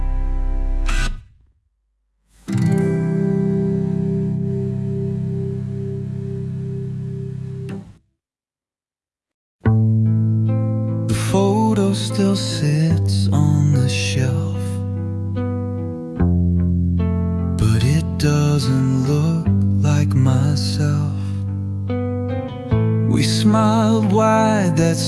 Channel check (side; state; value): both; identical; correlation 1.00